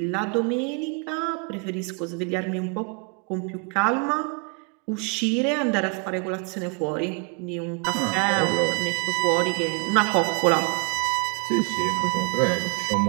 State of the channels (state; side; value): quieter; left; 32.2 dB